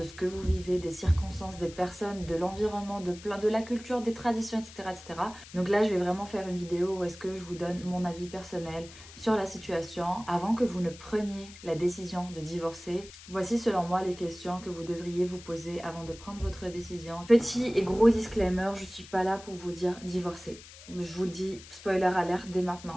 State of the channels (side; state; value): left; noise; hiss, 18 dB below the sound